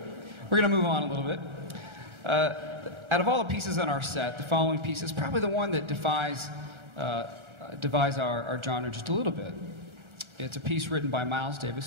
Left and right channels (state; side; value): late; left; 1.3 ms